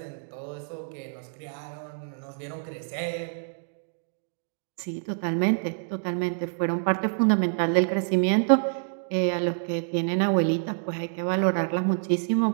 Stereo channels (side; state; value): left; silent; digital silence